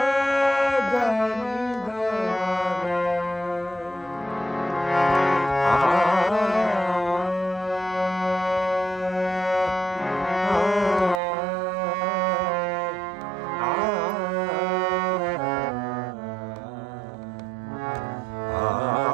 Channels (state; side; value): drops out; left; at 11.2 s